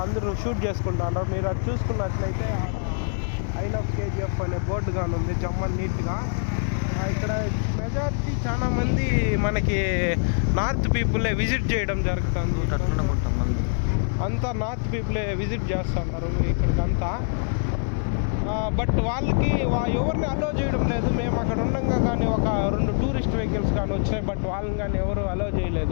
అందరూ షూట్ చేసుకుంటున్నారు. మీరు అది చూసుకున్నట్లయితే ఐ లవ్ KGF అనే బోర్డు కానీ ఉంది జమ్మన్ నీట్గా. ఇక్కడ మెజారిటీ చాలా మంది మనకి నార్త్ పీపులే విజిట్ చేయడం జరుగుతుంది. అంతా నార్త్ పీపులే విజిట్ చేస్తున్నారు ఇక్కడికంతా. బట్ వాళ్ళకి ఎవరిని అలో చేయడం లేదు. మేము అక్కడ ఉండగా కానీ ఒక 2 టూరిస్ట్ వెహికల్స్ కానీ వచ్చాయి, బట్ వాళ్ళని కానీ ఎవరు అలో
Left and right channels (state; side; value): silent; right; digital silence